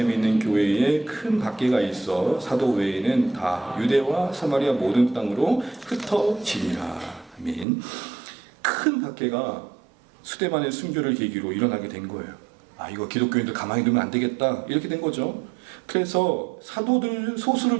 있는 교회에 큰 박해가 있어 사도 외에는 다 유대와 사마리아 모든 땅으로 흩어지니라. 아멘. 큰 박해가 스데반의 순교를 계기로 일어나게 된 거예요. 이거 기독교인들 가만히 두면 안 되겠다, 이렇게 된 거죠. 그래서 사도들 소수를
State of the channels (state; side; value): drops out; left; at 7.7 s